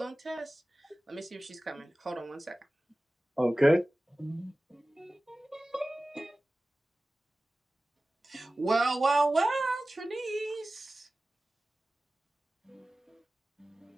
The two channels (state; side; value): normal; both; correlation 0.97